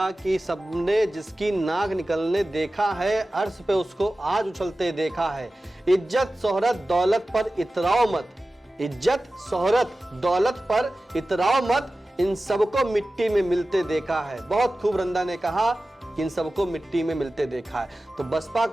कि सबने जिसकी नाक निकलने देखा है, अर्श पे उसको आज उछलते देखा है। इज्जत शोहरत दौलत पर इतराओ मत, इज्जत शोहरत दौलत पर इतराओ मत, इन सबको मिट्टी में मिलते देखा है। बहुत खूब रंदा ने कहा कि इन सबको मिट्टी में मिलते देखा है। तो बसपा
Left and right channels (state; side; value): normal; both; correlation 0.95